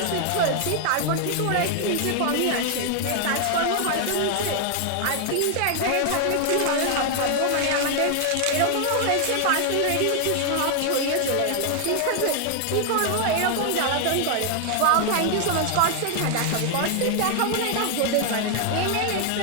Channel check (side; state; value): both; different; correlation 0.00